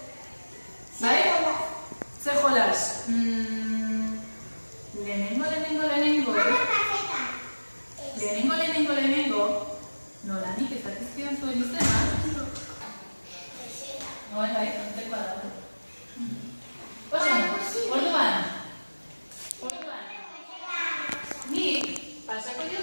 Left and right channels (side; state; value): both; inverted; correlation -1.00